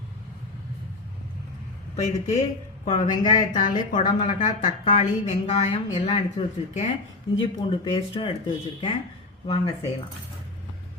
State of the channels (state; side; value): quieter; right; 3.2 dB